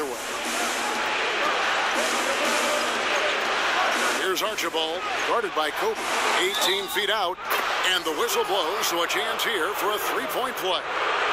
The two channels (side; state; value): left; noise; rumble, 27 dB below the sound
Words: way. Here's Archibald, guarded by Kobe. 18 feet out, and the whistle blows, so a chance here for a 3-point play.